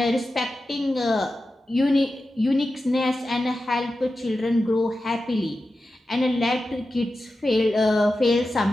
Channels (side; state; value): both; normal; correlation 0.92